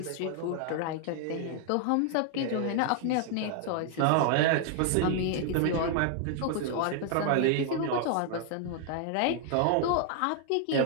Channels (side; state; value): both; different; correlation 0.00